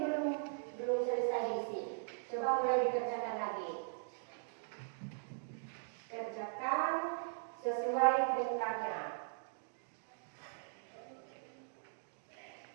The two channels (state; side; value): silent; left; digital silence